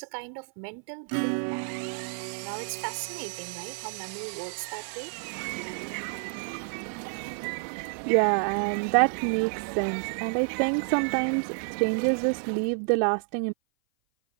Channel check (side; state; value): left; silent; 56 dB below the other